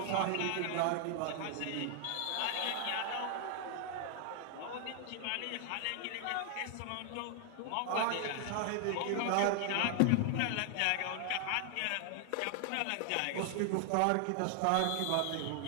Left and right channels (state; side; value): different; both; correlation 0.00